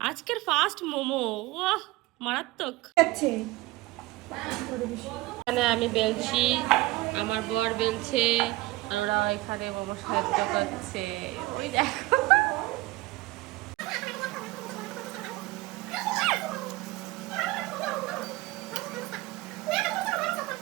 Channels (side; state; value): left; quieter; 19.8 dB